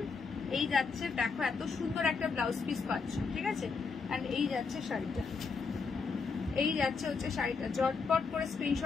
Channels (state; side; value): quieter; right; 4.9 dB